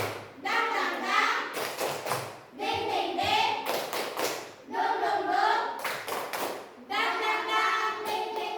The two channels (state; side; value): identical; both; correlation 1.00